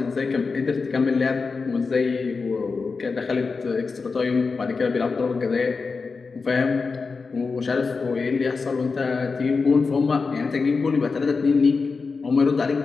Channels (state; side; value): quieter; right; 4.6 dB